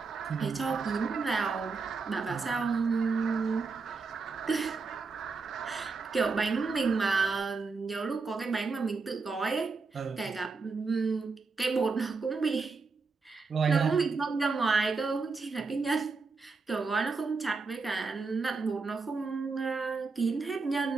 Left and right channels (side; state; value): left; quieter; 4.4 dB